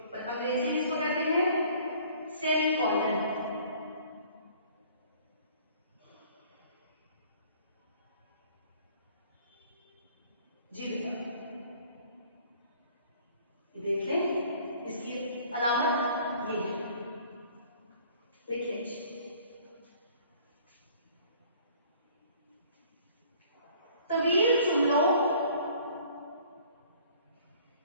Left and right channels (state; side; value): inverted; both; correlation -0.54